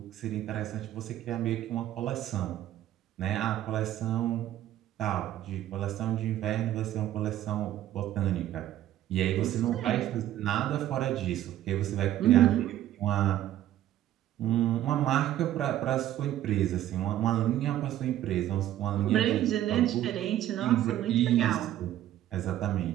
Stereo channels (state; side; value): quieter; left; 12.8 dB